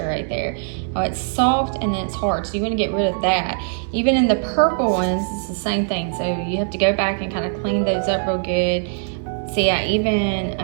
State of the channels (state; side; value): silent; left; digital silence